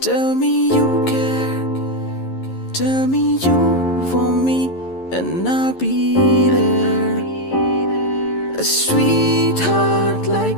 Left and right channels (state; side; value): late; right; 11 ms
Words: Tell me you care, tell me you want me, and I'll be there. A sweetheart.